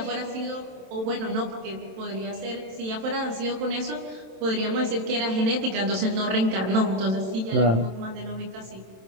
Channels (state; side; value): late; left; 27 ms